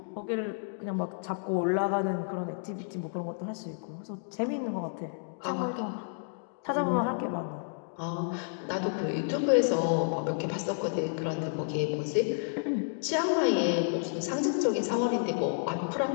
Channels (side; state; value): right; silent; digital silence